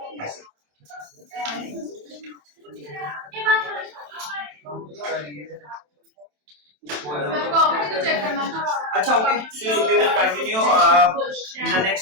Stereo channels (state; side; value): late; left; 27 ms